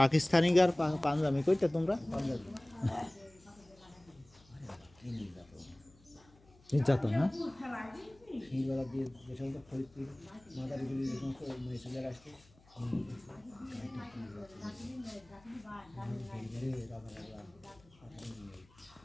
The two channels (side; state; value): left; noise; hum, 28 dB below the sound